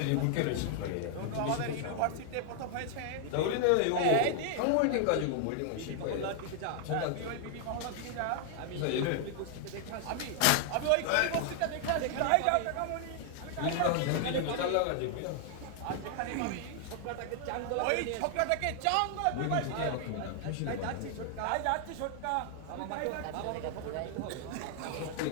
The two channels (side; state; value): both; different; correlation 0.00